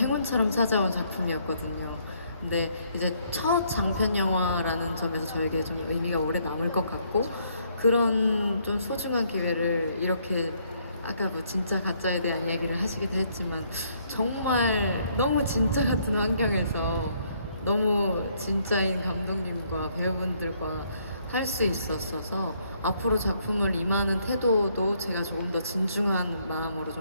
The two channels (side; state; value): both; inverted; correlation -0.69